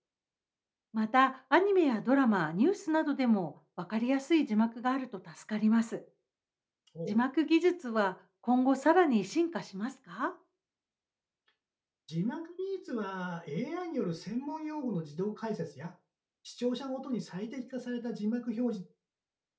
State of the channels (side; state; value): both; identical; correlation 1.00